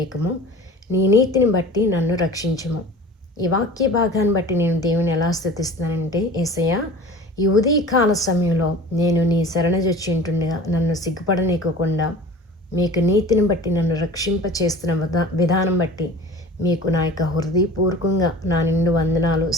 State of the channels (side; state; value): both; normal; correlation 0.40